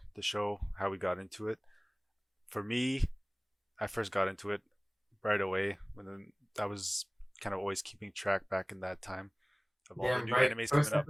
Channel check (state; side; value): identical; both; correlation 1.00